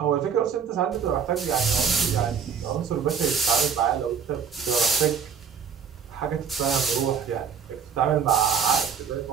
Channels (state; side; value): quieter; left; 6.9 dB